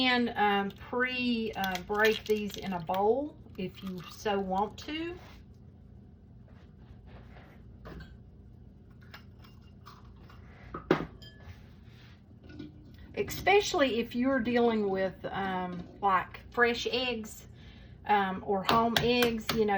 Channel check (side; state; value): both; identical; correlation 1.00